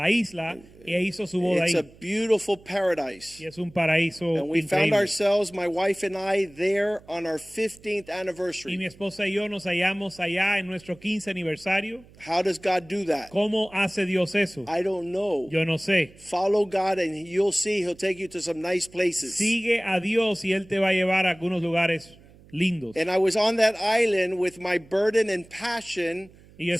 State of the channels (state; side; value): noise; right; hum, 24 dB below the sound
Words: isla e hizo su boda It's ahí. a beautiful paradise. Y es un paraíso And we found increíble. ourselves, my wife and I, there on our 15th Y mi anniversary. esposa y yo nos hallamos allá en nuestro 15 aniversario. How does God do that? ¿Cómo hace Dios eso? I don't know. Yo no sé. Follow God and you'll see he'll take you to some nice places. Sigue a Dios y Él te va a llevar a algunos lugares lindos. And I was on that island with my burden and passion Y yo